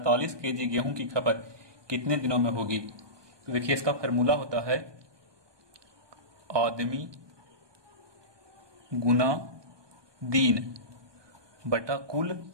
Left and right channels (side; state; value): left; late; 1.2 ms